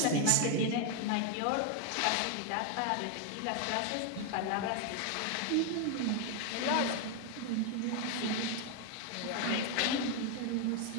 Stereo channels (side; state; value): both; different; correlation 0.01